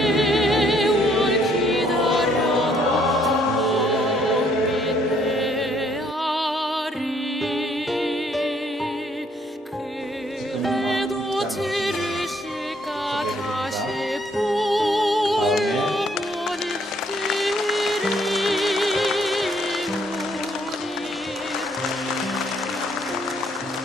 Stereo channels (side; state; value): both; normal; correlation 0.66